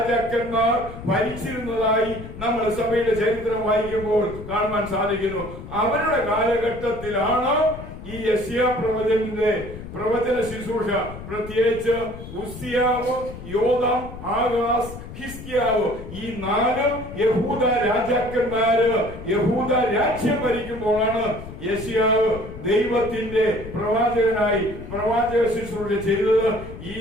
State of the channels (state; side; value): noise; left; rumble, 12 dB below the sound